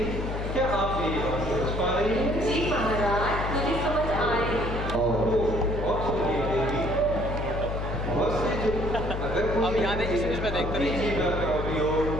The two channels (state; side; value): noise; left; hum, 4 dB below the sound